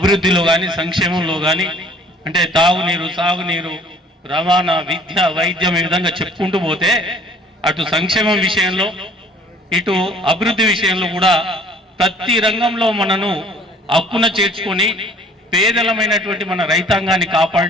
కానీ సంక్షేమంలో కానీ అంటే తాగునీరు, సాగునీరు, రవాణా, విద్య, వైద్యం ఈ విధంగా చెప్పుకుంటూ పోతే అటు సంక్షేమం విషయంలో ఇటు అభివృద్ధి విషయంలో కూడా ప్రతి రంగంలో మనను హక్కున చేర్చుకొని పేదలమైనటువంటి మన రైతాంగాన్ని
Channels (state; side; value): normal; both; correlation 0.54